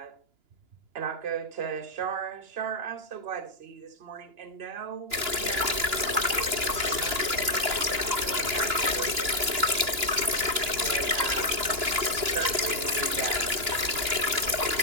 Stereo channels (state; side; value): late; left; 2.9 ms